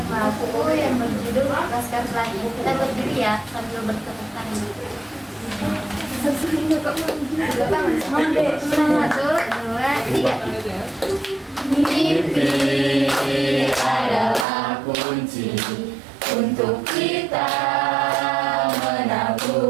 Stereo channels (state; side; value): drops out; left; at 14.5 s